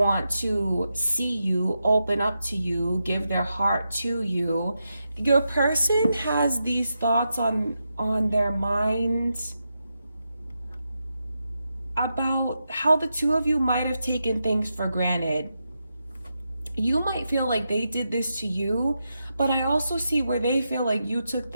to see you, open up to you, give their heart to you. Your person has these thoughts on their minds about how the two of you might have taken things for granted. You might feel like they did this to you, but I also see where they feel like you took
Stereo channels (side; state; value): both; inverted; correlation -0.87